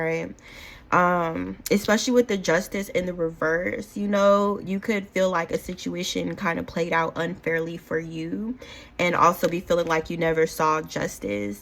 especially with the Justice in the reverse, you know, you could feel like a situation kind of played out unfairly for you, and also be feeling like you never saw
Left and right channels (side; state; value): both; identical; correlation 1.00